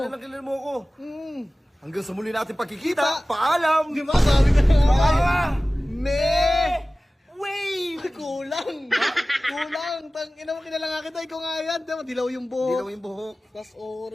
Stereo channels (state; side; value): normal; both; correlation 0.97